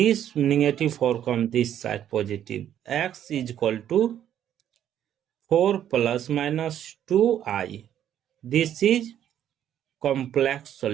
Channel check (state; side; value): quieter; left; 10.5 dB